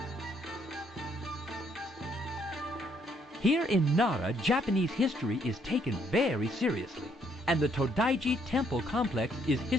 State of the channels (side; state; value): both; normal; correlation 0.69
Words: Here in Nara, Japanese history is taken very seriously, and the Todaiji Temple Complex is